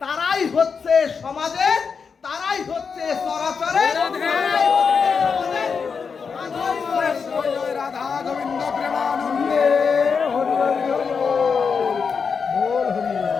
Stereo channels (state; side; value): quieter; right; 5.7 dB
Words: তারাই হচ্ছে সমাজে, তারাই হচ্ছে চরাচরে রাধা গোবিন্দ প্রেমানন্দে।